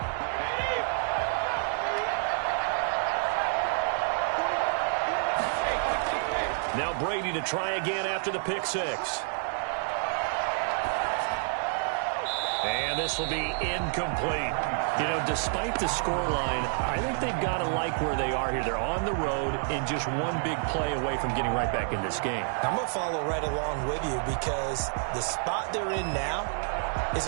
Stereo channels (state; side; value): silent; left; 59 dB below the other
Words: Now Brady to try again after the pick six. And this will be incomplete. You know, despite the scoreline, I think they've got to like where they are here. They're on the road and just one big play away from getting right back in this game. I'm going to follow right along with you because the spot they're in now is